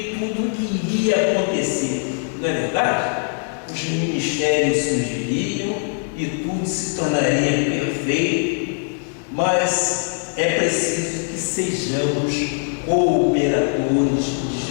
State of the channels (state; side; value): silent; right; 59 dB below the other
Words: tudo iria acontecer, não é verdade? Os ministérios surgiriam e tudo se tornaria perfeito, mas é preciso que sejamos cooperadores de